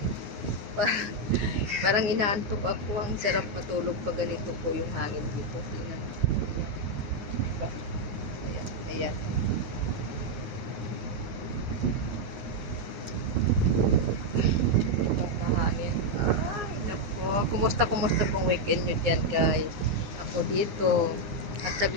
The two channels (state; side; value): late; left; 9.6 ms